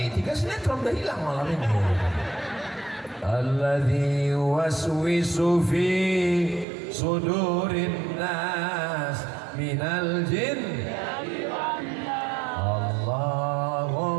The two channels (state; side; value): drops out; left; at 6.7 s